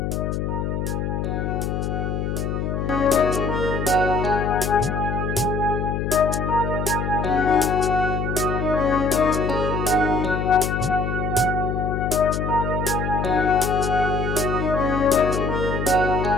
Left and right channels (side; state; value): left; noise; hum, 1 dB below the sound